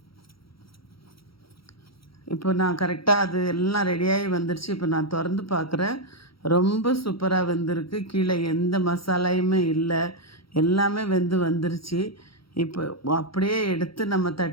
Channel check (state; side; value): late; right; 0.75 ms